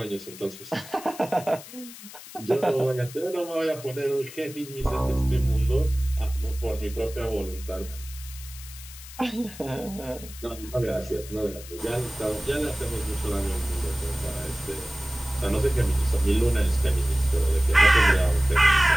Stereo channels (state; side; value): noise; left; hiss, 16 dB below the sound